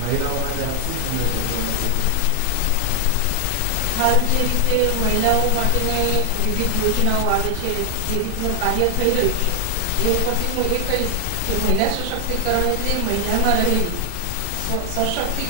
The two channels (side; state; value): both; different; correlation 0.00